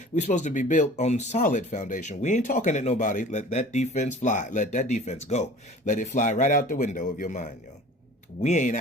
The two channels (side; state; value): both; normal; correlation 0.44